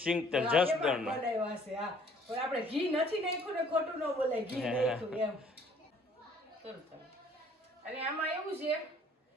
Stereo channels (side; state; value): both; normal; correlation 0.58